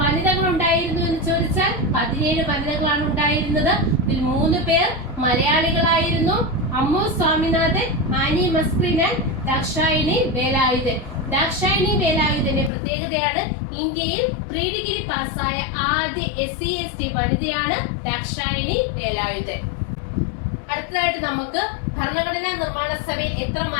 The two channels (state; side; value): drops out; right; at 12.7 s